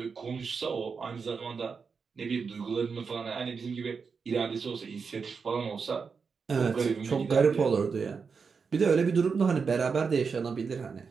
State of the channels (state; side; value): quieter; left; 5.4 dB